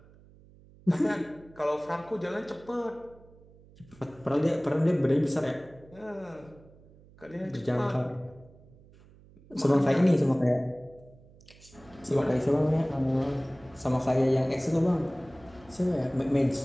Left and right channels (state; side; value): noise; right; hum, 25 dB below the sound